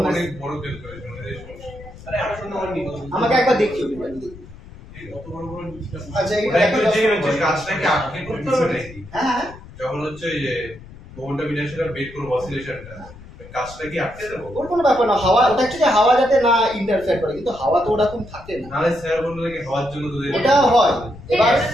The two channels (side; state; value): left; noise; rumble, 18 dB below the sound